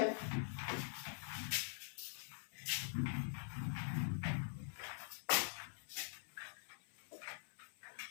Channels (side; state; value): right; silent; digital silence